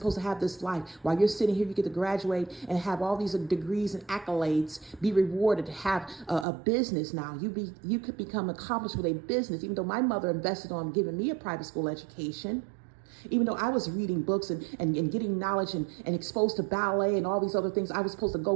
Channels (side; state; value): left; drops out; at 6.5 s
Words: to have this life. While you're sitting here, you get to graduate and have all these degrees and accolades, be rewarded, have a business now. You could become accomplished with a business, even though my mother invested on giving me a private school education. Even though I was reading books and getting knowledge and exposed to ballet and all these other things, I was supposed to